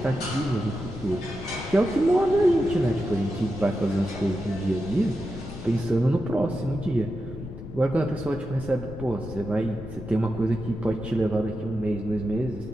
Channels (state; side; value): noise; left; rumble, 11 dB below the sound